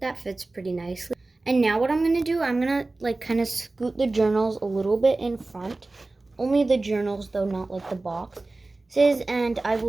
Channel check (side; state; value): left; quieter; 3.2 dB